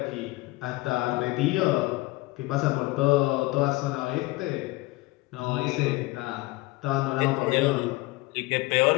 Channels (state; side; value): quieter; right; 21.3 dB